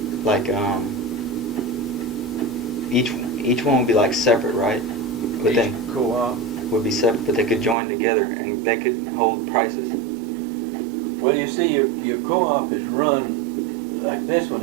Like each one would be like separate, right? But Each then co-op. would be separate, but they could join together and they could hold prices. Well, you see, your co-op is run, like this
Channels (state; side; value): drops out; left; at 7.8 s